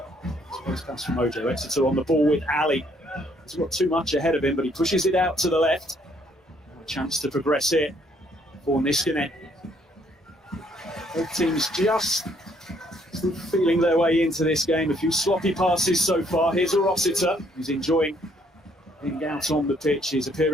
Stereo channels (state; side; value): normal; both; correlation 0.67